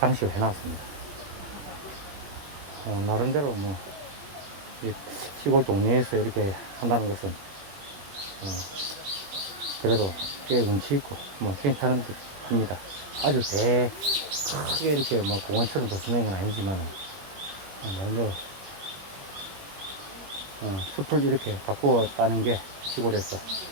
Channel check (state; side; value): late; left; 21 ms